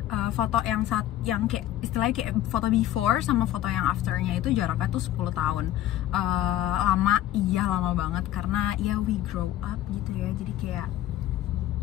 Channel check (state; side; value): quieter; right; 13.3 dB